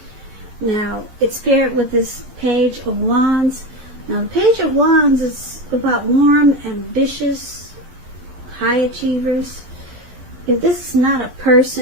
Now, it's paired with this Page of Wands. Now, the Page of Wands is about warm, ambitious, high achievers. If this is not a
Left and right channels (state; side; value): late; left; 11 ms